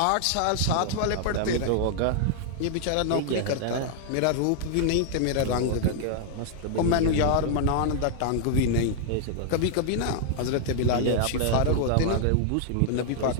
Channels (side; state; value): both; different; correlation -0.01